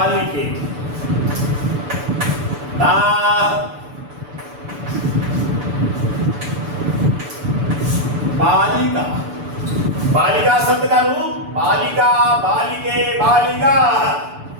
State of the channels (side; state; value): left; late; 6.9 ms